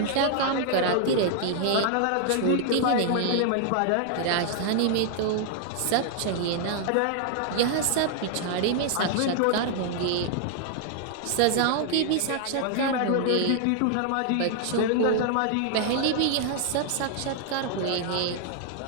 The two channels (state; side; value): different; both; correlation 0.00